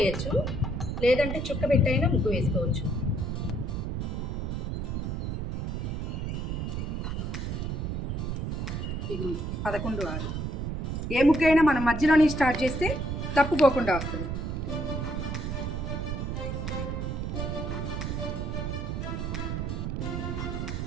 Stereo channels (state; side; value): noise; right; rumble, 2 dB below the sound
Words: లేదంటే చుక్క పెట్టైనా ముగ్గు వేసుకోవచ్చు. ఇది 11 6. ఏ ముగ్గు అయినా మనం మధ్యలోనే స్టార్ట్ చేస్తే తప్పుకోకుండా వస్తుంది.